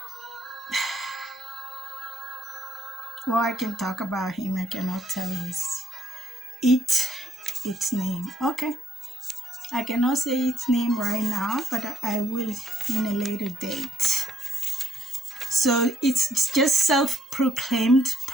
I can talk about him. I cannot tell its name. Okay. I cannot say its name right now, but I will in a later date. So it's just self-proclaimed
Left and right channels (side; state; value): both; normal; correlation 0.70